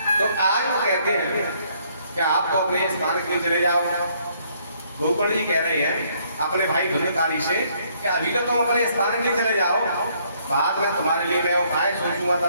तो आज वो कहते हैं कि आप तो अपने स्थान के लिए चले जाओ। गौकर्ण जी कह रहे हैं अपने भाई धुंधकारी से कि अभी तो तुम अपने स्थान के लिए चले जाओ, बाद में तुम्हारे लिए मैं उपाय सोचूंगा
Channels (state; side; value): inverted; both; correlation -0.67